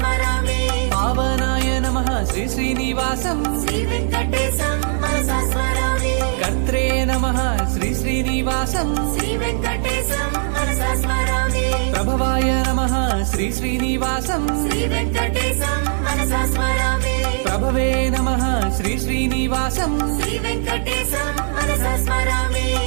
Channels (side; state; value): left; silent; 66 dB below the other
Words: పావనాయ నమః శ్రీ శ్రీనివాసం శ్రీ వెంకటేశం మనసా స్మరామి. కర్త్రే నమః శ్రీ శ్రీనివాసం శ్రీ వెంకటేశం మనసా స్మరామి. ప్రభవాయ నమః శ్రీ శ్రీనివాసం శ్రీ వెంకటేశం మనసా స్మరామి. ప్రభవే నమః శ్రీ శ్రీనివాసం శ్రీ వెంకటేశం మనసా స్మరామి.